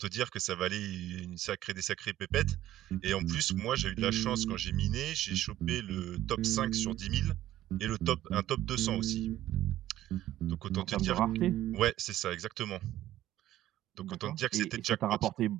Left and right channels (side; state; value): left; quieter; 13.8 dB